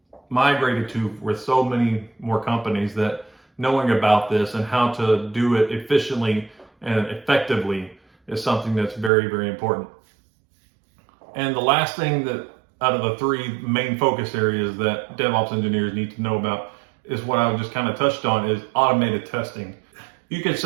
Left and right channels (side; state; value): left; drops out; at 9.1 s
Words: migrated to with so many more companies, that knowing about this and how to do it efficiently and effectively is something that's very, very important. And the last thing that out of the three main focus areas that DevOps engineers need to know about is what I just kind of touched on, is automated testing. You can